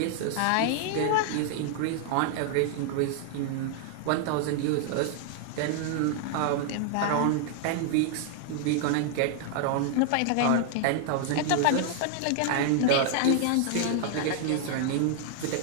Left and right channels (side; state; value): both; different; correlation -0.01